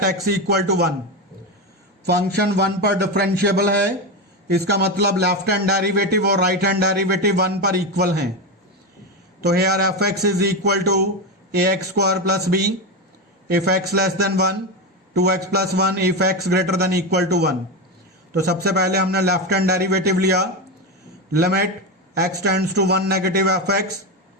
x equal to 1। Function 1 पर differentiable है, इसका मतलब left hand derivative और right hand derivative 1 पर equal हैं, तो here f(x) is equal to ax square plus b if x less than 1, 2x plus 1 if x greater than equal to 1। तो सबसे पहले हमने लेफ्ट हैंड डेरिवेटिव लिया, limit x tends to 1 negative f x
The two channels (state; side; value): normal; both; correlation 0.14